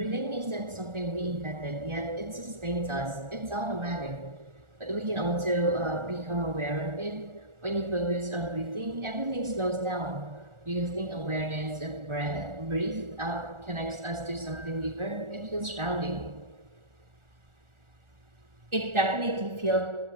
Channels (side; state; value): left; late; 1.4 ms